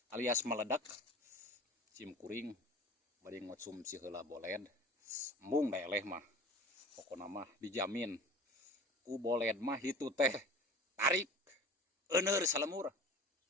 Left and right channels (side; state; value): both; normal; correlation 0.39